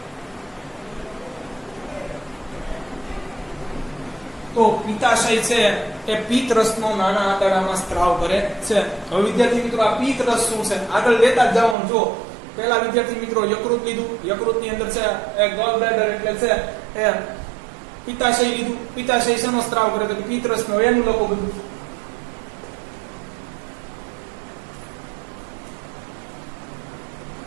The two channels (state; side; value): drops out; left; at 11.8 s